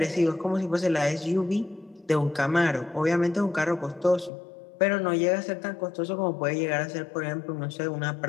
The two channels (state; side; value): drops out; right; at 4.3 s